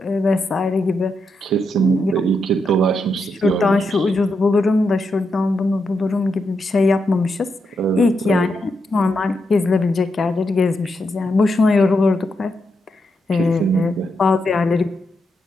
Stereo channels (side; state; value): both; normal; correlation 0.83